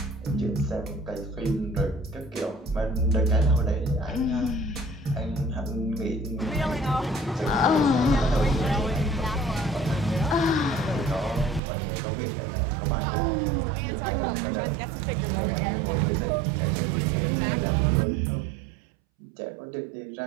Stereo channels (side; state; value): left; drops out; at 11.6 s